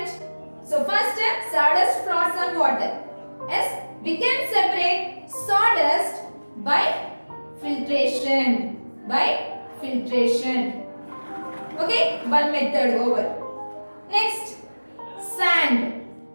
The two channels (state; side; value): inverted; both; correlation -1.00